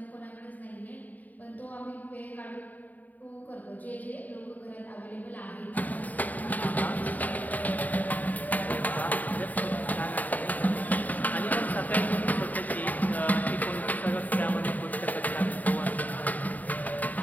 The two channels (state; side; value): late; right; 0.079 ms